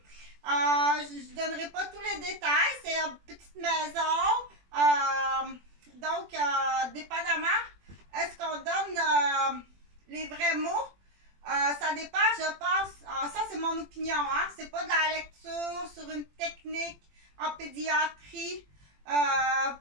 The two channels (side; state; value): left; late; 21 ms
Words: Je ne donnerai pas tous les détails. C'est une petite maison. Donc, dépendamment, est-ce qu'on donne les vrais mots? Ça dépend, je pense. Ça, c'est mon opinion. Hein? C'est pas de la lecture sur une technique en pédiatrie,